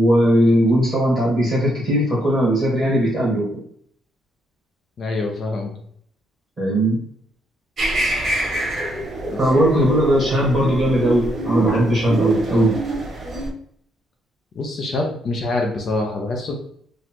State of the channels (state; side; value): normal; both; correlation 0.75